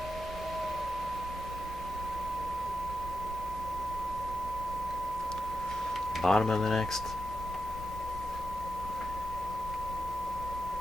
Bottom of the next.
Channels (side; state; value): both; normal; correlation 0.87